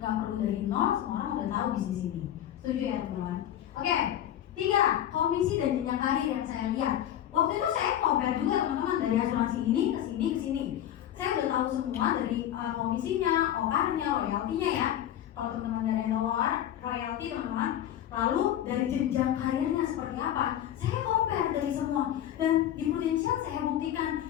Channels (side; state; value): right; quieter; 11.4 dB